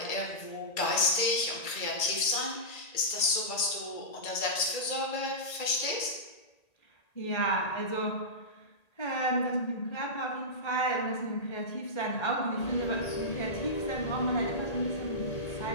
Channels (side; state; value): right; late; 1.8 ms